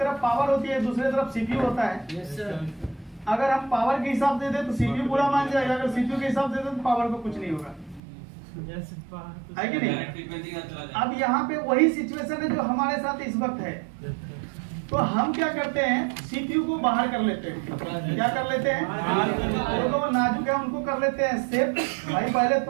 पावर होती है, दूसरी तरफ सीपीयू होता है। अगर हम पावर के हिसाब से दे तो सीपीयू पूरा मान जाएगा, अगर सीपीयू के हिसाब से दे तो पावर को कुछ नहीं होगा, है कि नहीं? अब यहाँ पे वही सिचुएशन है जो हमारे साथ इस वक्त है। तो हम क्या करते हैं, सीपीयू को बाहर कर लेते हैं। क्या कर लेते हैं? जो नाजुक है उनको कर लेते हैं सेफ। भाई पहले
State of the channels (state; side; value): drops out; left; at 8.0 s